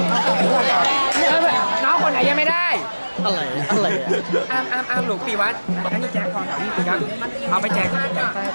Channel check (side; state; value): both; inverted; correlation -1.00